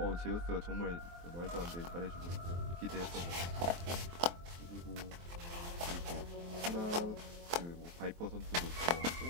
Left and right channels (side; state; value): left; late; 23 ms